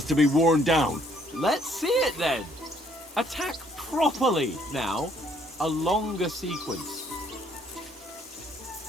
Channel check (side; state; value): both; normal; correlation 0.65